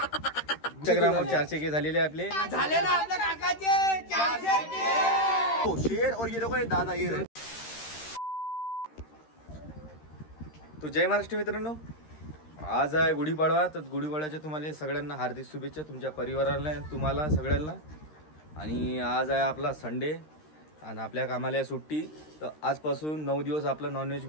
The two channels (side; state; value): right; late; 13 ms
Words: इंस्टाग्रामवर 400K झालेले आपले झाले ना आपल्या काकाचे 400K शेर और ये देखो ये दादा ये रहे। तो जय महाराष्ट्र मित्रांनो, आज आहे गुढीपाडवा। तर गुढीपाडव्याच्या तुम्हाला सगळ्यांना हार्दिक शुभेच्छा, तुमच्या परिवाराला, तुम्हाला सगळ्यांना। आणि आज आहे आपला संडे आणि आपल्या कामाला आहे सुट्टी। तर आजपासून 9 दिवस आपला नॉनव्हेज